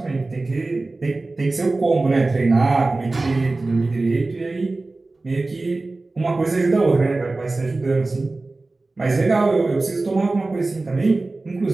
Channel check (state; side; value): quieter; left; 3.3 dB